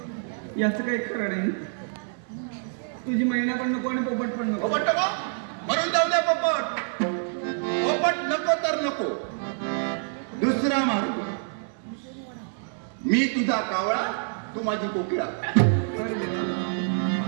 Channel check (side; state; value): left; silent; 60 dB below the other